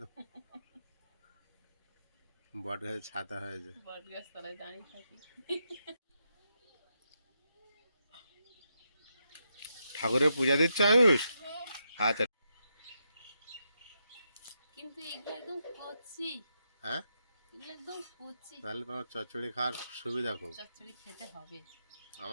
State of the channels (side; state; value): both; inverted; correlation -0.83